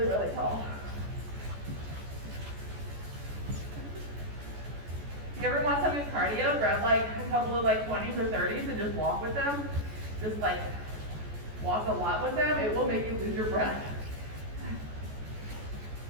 really tall. If you ever want some good cardio, grab like a couple of like 20s or 30s and just walk with them. Just like walk a lot with them. It will make you lose your breath.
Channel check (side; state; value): left; late; 14 ms